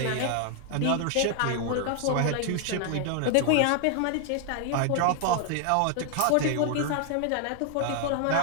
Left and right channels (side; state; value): both; different; correlation 0.00